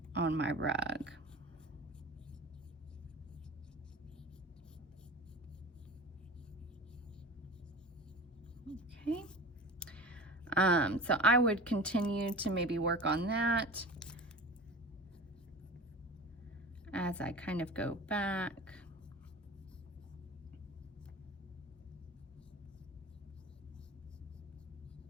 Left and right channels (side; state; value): both; normal; correlation 0.35